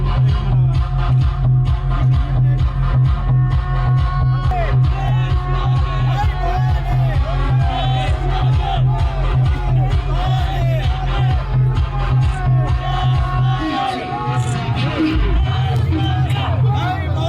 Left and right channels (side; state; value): both; identical; correlation 1.00